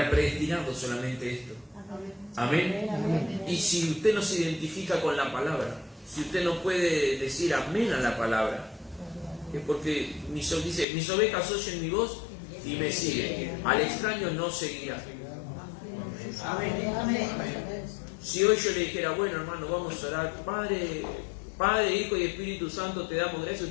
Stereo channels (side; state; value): right; drops out; at 10.9 s